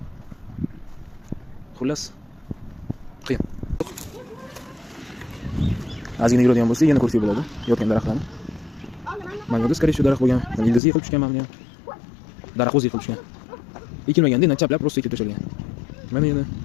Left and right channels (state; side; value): drops out; right; at 10.8 s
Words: Xullas qiyin. Ozgina yuradigan bo'lsa, yana ko'rsak bo'ladi yotgan daraxtlarni. Mana yo'qda, скорее всего, daraxt bo'lgan. Ildizi yiqilib tushgan mana ham. Daraxt o'zi yiqilib tushgan. Ekilmaganda, chaplab просто ekib tashalgan. Mana yana